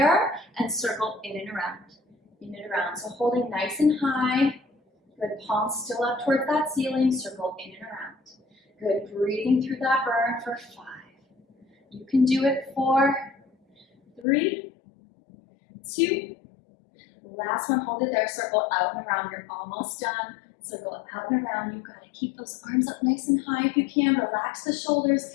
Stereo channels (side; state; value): right; drops out; at 14.2 s